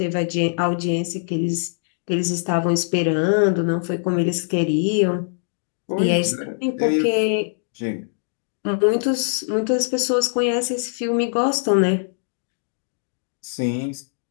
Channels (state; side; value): silent; right; digital silence